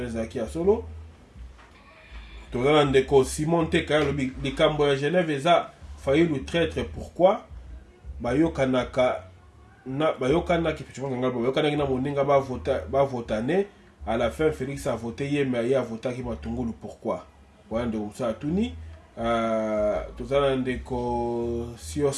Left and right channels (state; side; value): identical; both; correlation 1.00